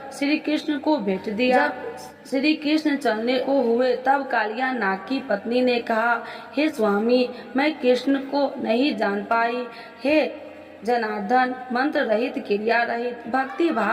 श्री कृष्ण को भेंट दिया। जब श्री कृष्ण चलने को हुए तब कालिया नाग की पत्नी ने कहा, हे स्वामी, मैं कृष्ण को नहीं जान पाई। हे जनार्दन, मंत्र रहित, क्रिया रहित, भक्ति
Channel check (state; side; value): identical; both; correlation 1.00